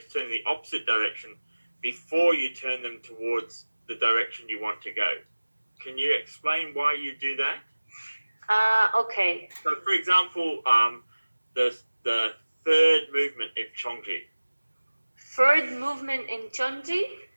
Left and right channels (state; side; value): inverted; both; correlation -1.00